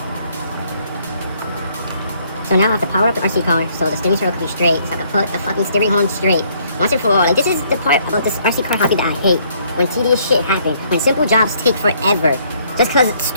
So now I have to power up the RC car so the steering circle can be straight, so I can put the fucking steering horn straight once and for all. Like, this is the part about this RC car hobby that I hate. When tedious shit happens, when simple jobs take forever, just cause it's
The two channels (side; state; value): both; inverted; correlation -0.66